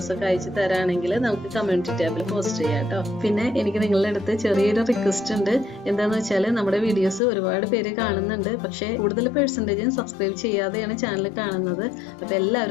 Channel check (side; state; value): right; drops out; at 7.2 s